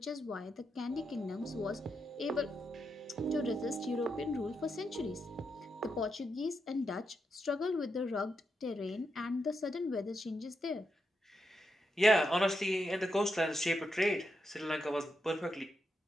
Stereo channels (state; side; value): normal; both; correlation 0.84